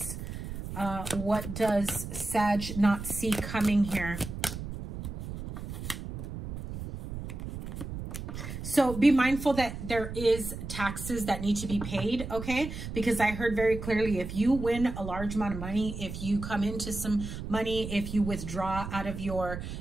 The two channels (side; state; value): right; noise; rumble, 8 dB below the sound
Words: What does Sag not see coming here? So be mindful that there is taxes that need to be paid, okay? Because I heard very clearly, if you win a large amount of money, if you come into some money, if you withdraw out of your,